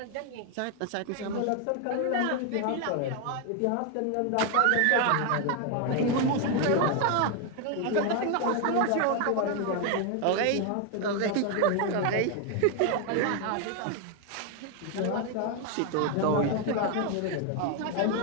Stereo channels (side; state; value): both; different; correlation 0.01